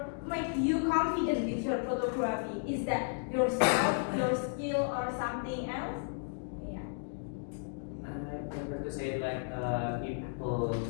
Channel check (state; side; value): silent; right; digital silence